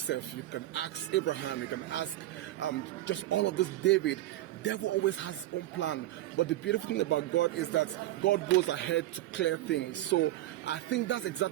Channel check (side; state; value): left; quieter; 15.1 dB